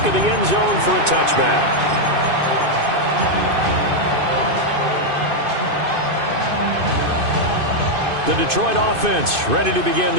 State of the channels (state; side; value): late; left; 2.5 ms